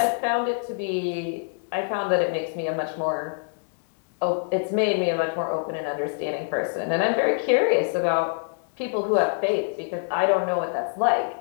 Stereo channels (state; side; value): silent; right; digital silence